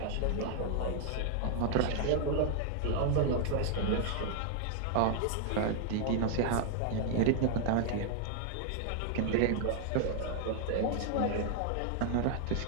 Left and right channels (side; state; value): both; different; correlation 0.00